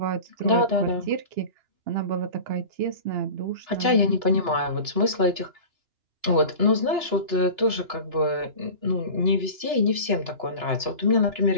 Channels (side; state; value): left; late; 2.9 ms